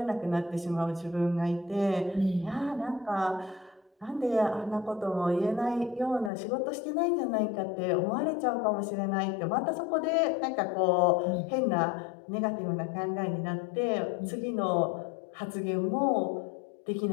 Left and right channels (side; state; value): right; drops out; at 6.3 s